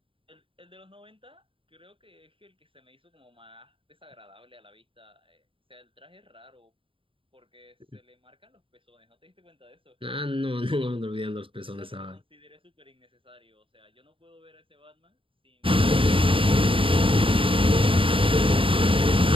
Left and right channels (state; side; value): late; left; 0.25 ms